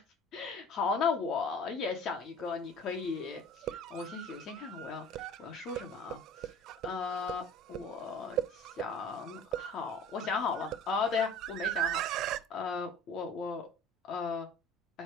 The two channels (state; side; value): normal; both; correlation 0.44